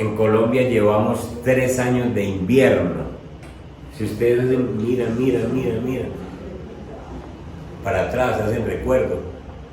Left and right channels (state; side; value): identical; both; correlation 1.00